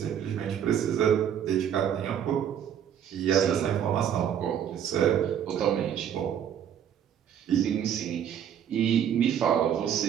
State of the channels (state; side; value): quieter; left; 9.2 dB